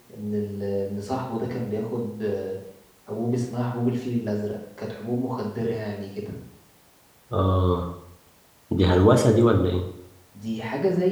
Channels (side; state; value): both; identical; correlation 1.00